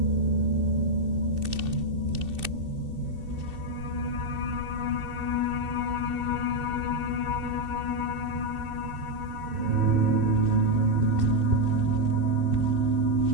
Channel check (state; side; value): late; left; 2.7 ms